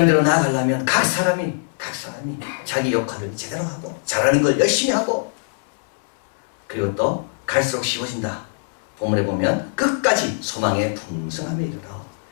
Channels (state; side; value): silent; right; 60 dB below the other